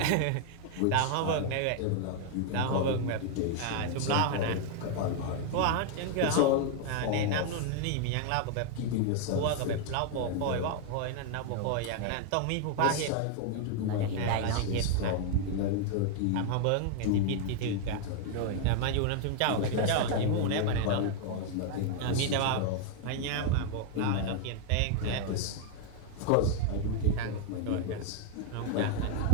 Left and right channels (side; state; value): both; different; correlation 0.00